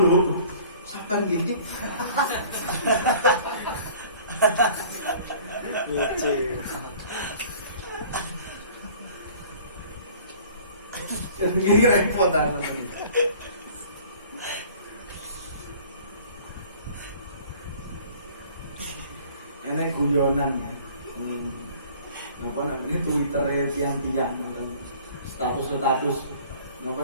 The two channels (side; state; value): both; inverted; correlation -0.49